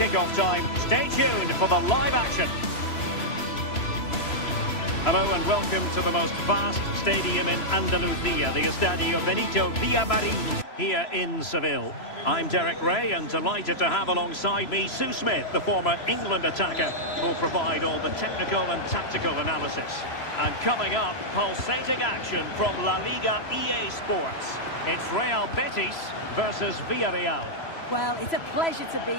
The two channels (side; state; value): right; late; 3.0 ms